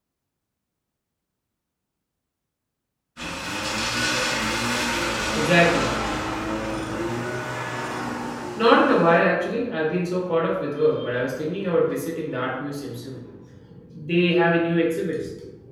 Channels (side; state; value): both; identical; correlation 1.00